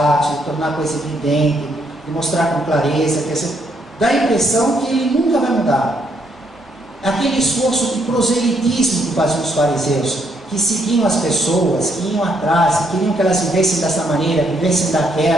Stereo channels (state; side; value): normal; both; correlation 0.73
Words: de tornar a coisa evidente, de mostrar com clareza, dá a impressão que ele nunca vai mudar. Aquele esforço de proselitismo que faziam os fariseus, que seguiam as pessoas, que iam atrás, que queriam que elas vivessem dessa maneira, vivessem